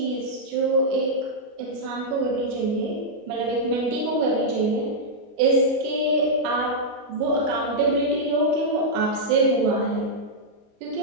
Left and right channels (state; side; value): late; left; 29 ms